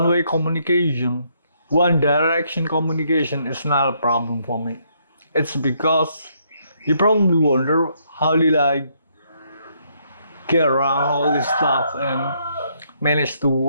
communication, one direction communication is not a problem for me. It's because you probably wonder, how did I get around all this stuff and manage to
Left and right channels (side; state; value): both; inverted; correlation -0.72